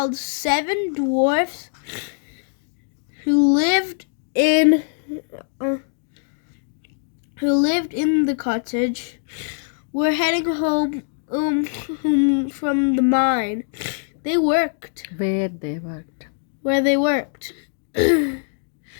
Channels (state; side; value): silent; right; digital silence